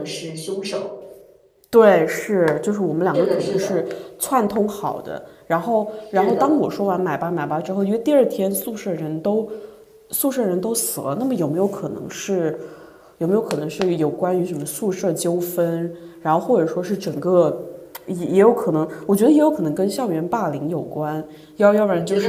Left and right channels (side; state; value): both; identical; correlation 1.00